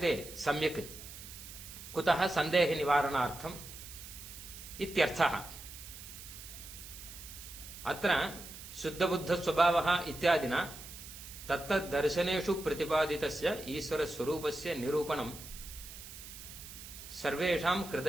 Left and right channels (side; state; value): right; noise; hiss, 13 dB below the sound